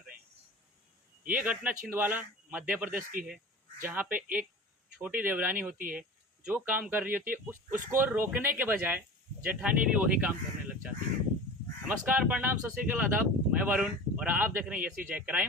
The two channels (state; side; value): normal; both; correlation 0.35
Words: हैं। ये घटना छिंदवाड़ा मध्य प्रदेश की है, जहाँ पे एक छोटी देवरानी होती है जो काम कर रही होती है, उसको रोकने के बजाय जेठानी भी वही काम करने लग जाती है। नमस्कार, प्रणाम, सत श्री अकाल, आदाब। मैं वरुण और आप देख रहे हैं यसी जय